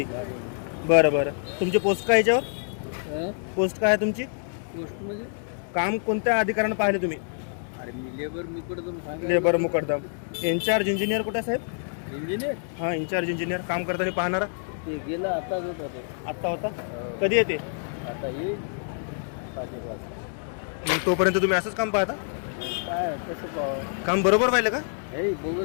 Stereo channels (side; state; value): right; silent; digital silence